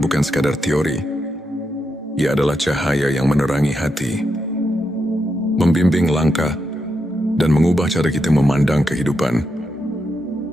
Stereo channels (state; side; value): normal; both; correlation 0.84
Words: sekadar teori. Ia adalah cahaya yang menerangi hati, membimbing langkah, dan mengubah cara kita memandang kehidupan.